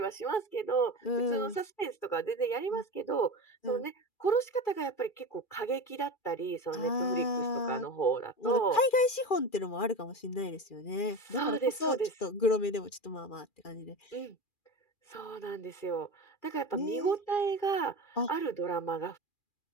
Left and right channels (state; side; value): late; right; 2.4 ms